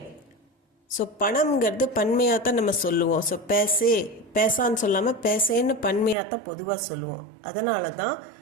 ஸோ பணம்ங்கிறது பன்மையாக தான் நம்ம சொல்லுவோம். ஸோ பேசான்னு சொல்லாமல் பேசேன்னு பன்மையாக தான் பொதுவாக சொல்லுவோம். அதனால தான்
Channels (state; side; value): drops out; left; at 6.2 s